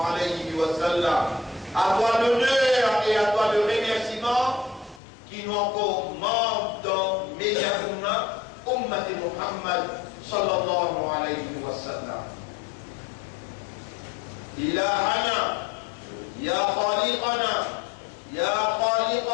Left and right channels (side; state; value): right; drops out; at 5.0 s